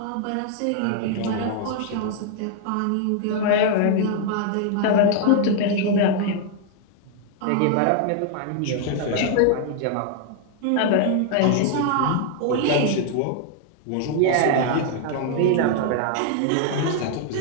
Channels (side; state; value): both; different; correlation 0.00